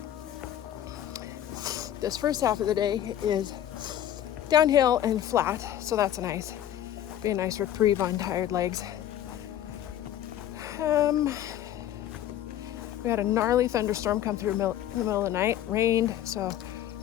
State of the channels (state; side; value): quieter; right; 11.5 dB